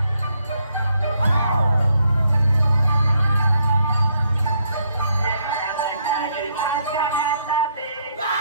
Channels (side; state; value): both; inverted; correlation -0.73